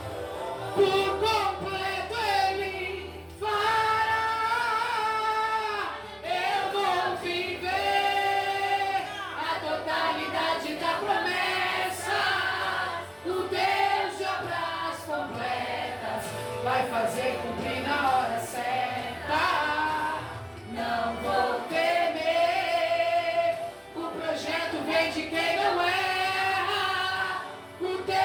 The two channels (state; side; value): identical; both; correlation 1.00